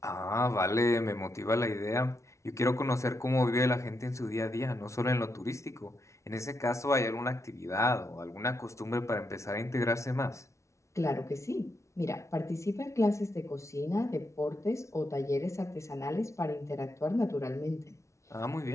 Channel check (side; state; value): right; late; 0.14 ms